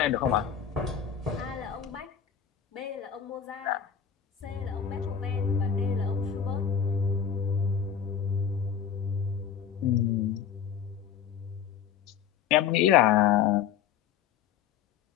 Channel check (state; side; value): quieter; right; 8.2 dB